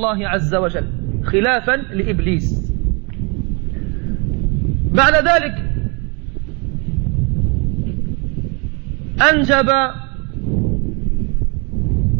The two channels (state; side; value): quieter; left; 31.9 dB